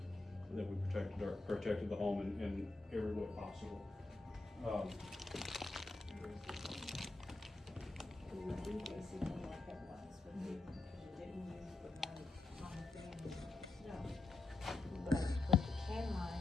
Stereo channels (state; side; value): quieter; right; 3.3 dB